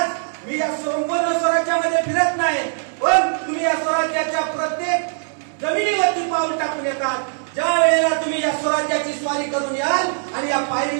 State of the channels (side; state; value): left; silent; 65 dB below the other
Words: मी या संपूर्ण स्वराज्यामध्ये फिरत नाही, पण तुम्ही या स्वराज्याच्या प्रत्येक जमिनीवरती पाऊल टाकून येतात. ज्या वेळेला तुम्ही या स्वराज्याची स्वारी करून याल आणि या